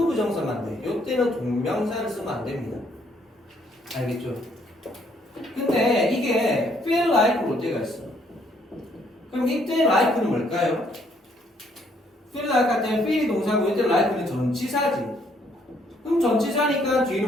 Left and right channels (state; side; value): normal; both; correlation 0.68